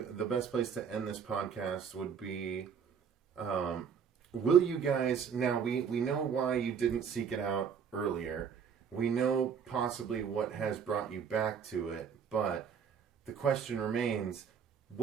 best place to end this podcast would be, will you guys, now we know why you didn't seek it out earlier. We know possibly what has brought you back to it, but the question remains,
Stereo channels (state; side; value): quieter; left; 7.1 dB